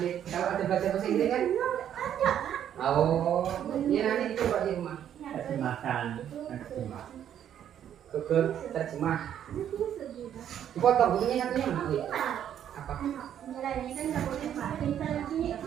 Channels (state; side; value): quieter; left; 10.0 dB